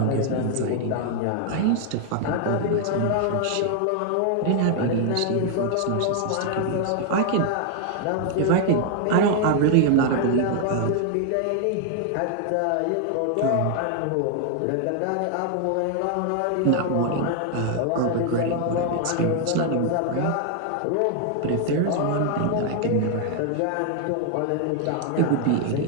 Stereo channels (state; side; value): different; both; correlation 0.00